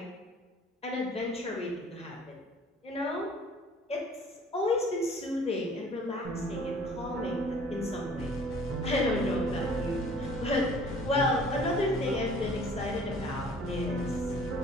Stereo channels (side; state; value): both; normal; correlation 0.52